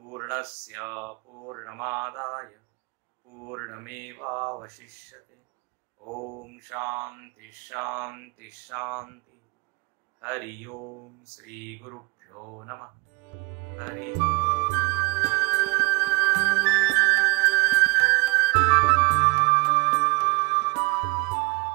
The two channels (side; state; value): left; quieter; 26.5 dB